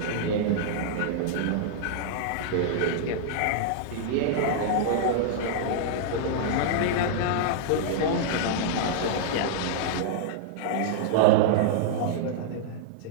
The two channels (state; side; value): different; both; correlation -0.01